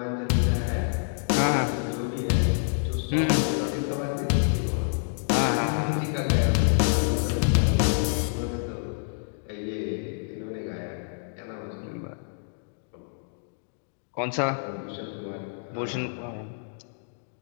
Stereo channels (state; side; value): silent; right; digital silence